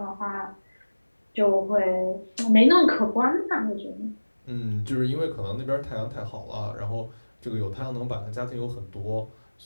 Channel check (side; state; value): both; inverted; correlation -1.00